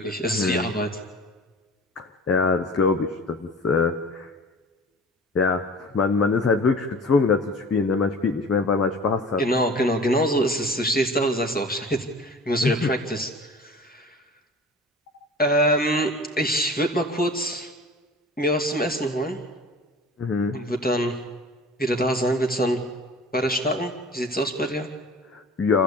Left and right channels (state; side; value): normal; both; correlation 0.41